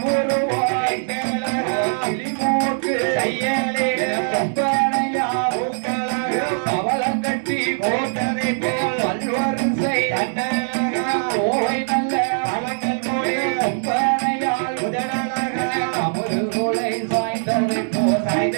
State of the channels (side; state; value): left; silent; digital silence